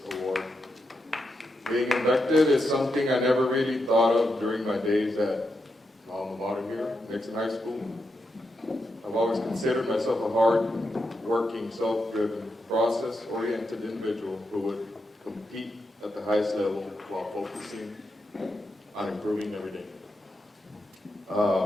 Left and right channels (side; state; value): both; normal; correlation 0.85